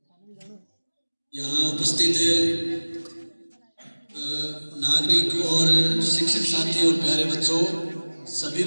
यहाँ उपस्थित नागरिक और शिक्षक साथी और प्यारे बच्चों, सभी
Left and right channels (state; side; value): inverted; both; correlation -1.00